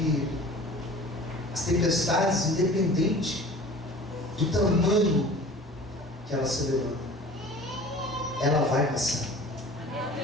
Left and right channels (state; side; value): normal; both; correlation 0.43